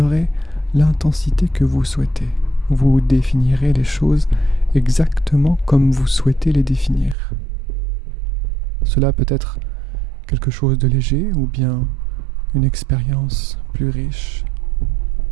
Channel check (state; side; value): drops out; left; at 7.2 s